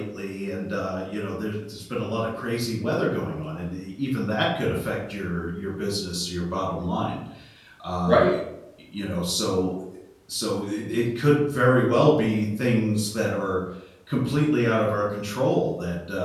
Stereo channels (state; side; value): identical; both; correlation 1.00